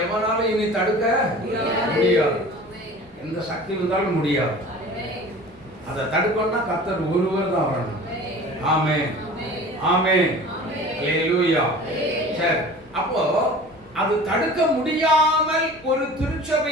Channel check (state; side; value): noise; left; rumble, 29 dB below the sound